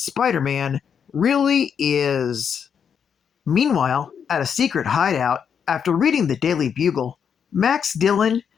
really is. Meanwhile, at a secret hideout, after reading the Daily Bugle, Max Dillon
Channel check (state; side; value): quieter; right; 7.3 dB